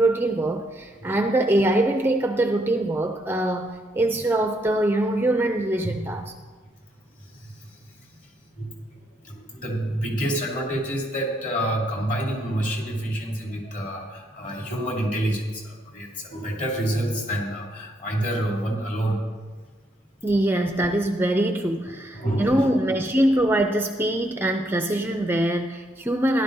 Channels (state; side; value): normal; both; correlation 0.74